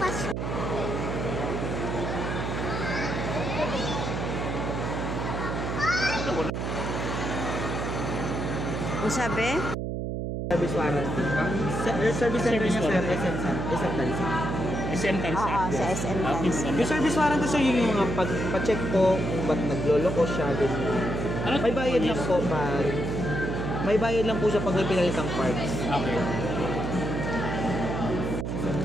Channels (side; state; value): right; noise; hum, 3 dB below the sound